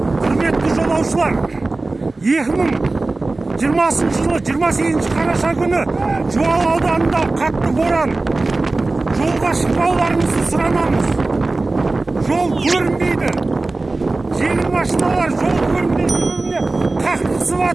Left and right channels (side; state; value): left; quieter; 3.3 dB